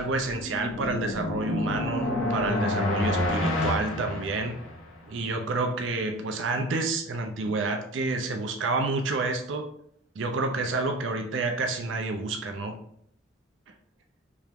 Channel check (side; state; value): both; normal; correlation 0.36